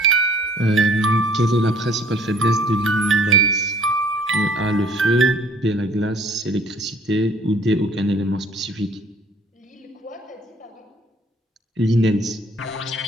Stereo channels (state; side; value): normal; both; correlation 0.56